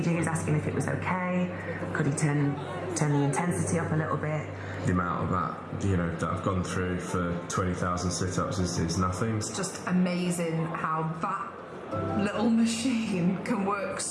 he was asking if it was okay. Could he turn the intensity up a little bit? The amount of that, that I've gone through for 20,000 sit-ups is nothing. It's just amazing how that little machine can work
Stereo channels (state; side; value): identical; both; correlation 1.00